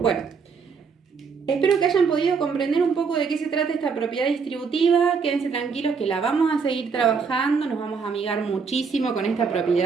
Bueno, espero que hayan podido comprender un poco de qué se trata esta propiedad distributiva. Quédense tranquilos que la vamos a seguir trabajando, nos vamos a amigar muchísimo con esta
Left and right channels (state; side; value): quieter; left; 5.5 dB